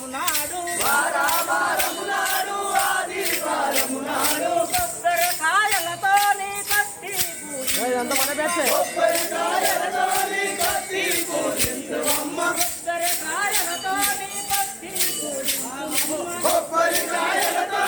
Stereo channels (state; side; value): identical; both; correlation 1.00